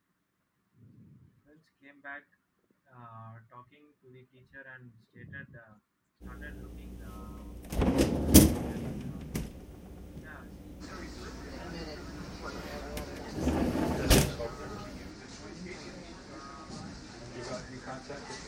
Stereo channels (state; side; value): identical; both; correlation 1.00